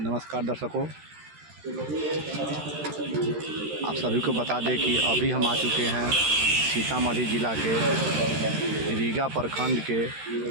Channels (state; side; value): late; left; 13 ms